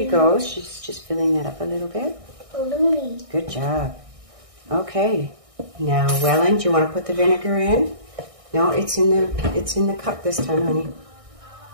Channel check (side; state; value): left; late; 1.6 ms